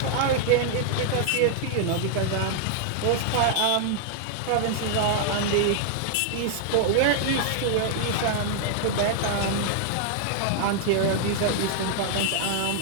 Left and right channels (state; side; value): different; both; correlation -0.01